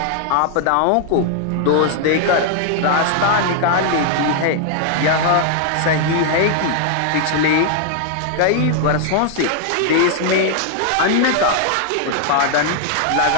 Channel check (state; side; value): different; both; correlation 0.00